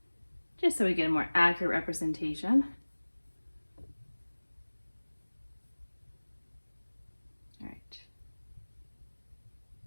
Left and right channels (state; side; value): inverted; both; correlation -1.00